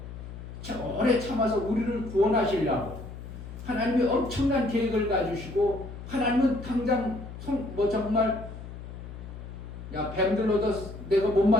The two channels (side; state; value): left; noise; hum, 12 dB below the sound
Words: 오래 참아서 우리를 구원하시려고 하나님이 엄청난 계획을 가지시고, 하나님은 당장 정말 뱀들로도 내가 못